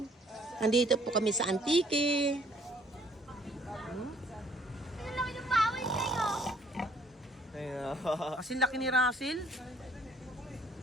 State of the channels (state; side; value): normal; both; correlation 0.61